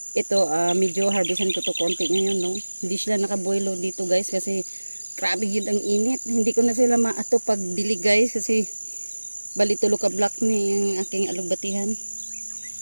Ito, medyo harvestan ko to konti ngayon, no. Hindi sila nakabuelo dito guys kasi grabe yun ang init. Hindi ko na sila maato pag dilig guys kasi bali tulo ka block ni yung aking alugbatihan.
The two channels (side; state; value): both; inverted; correlation -1.00